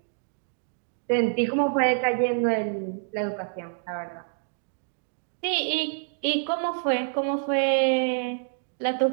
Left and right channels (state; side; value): silent; left; digital silence